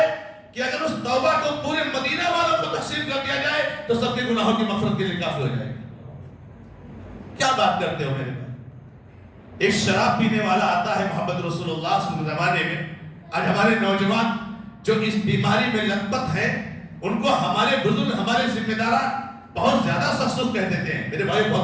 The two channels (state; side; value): identical; both; correlation 1.00